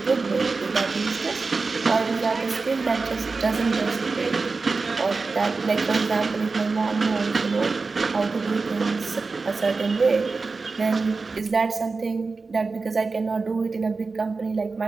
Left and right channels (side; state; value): left; quieter; 4.1 dB